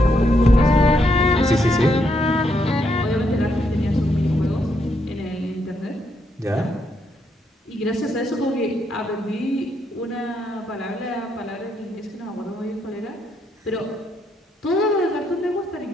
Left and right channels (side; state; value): both; normal; correlation 0.77